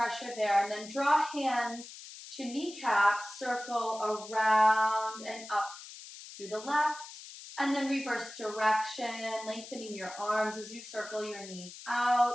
there. And then draw hands to kneecaps, circle around and up through the left. And then reverse direction, lengthening your arms as you circle your knees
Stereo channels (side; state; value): left; noise; hiss, 14 dB below the sound